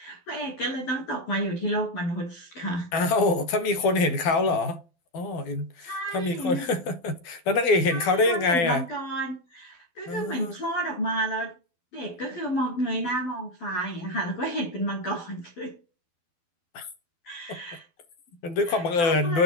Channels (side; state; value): right; late; 12 ms